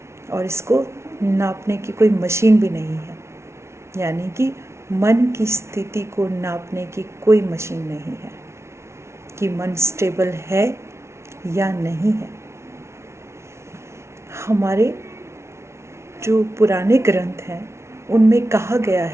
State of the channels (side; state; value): left; late; 0.13 ms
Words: और इसको नापने की कोई मशीन भी नहीं है, यानी कि मन की स्थिति को नापने की कोई मशीन नहीं है कि मन स्टेबल है या नहीं है। हमारे जो पुराने ग्रंथ हैं उनमें कहा गया